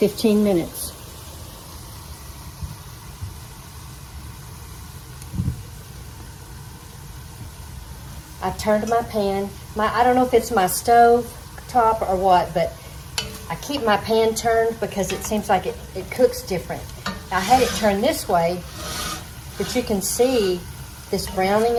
minutes. I've turned my pan. I don't know if it's my stove top or what, but I keep my pan turned because it seems like it cooks different. I had it turned this way, but you can see this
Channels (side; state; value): both; identical; correlation 1.00